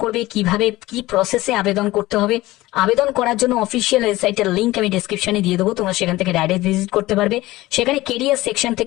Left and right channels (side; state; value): right; quieter; 18.1 dB